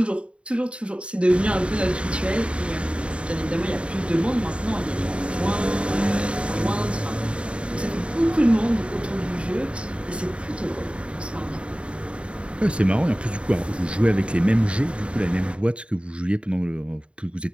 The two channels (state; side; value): late; left; 0.058 ms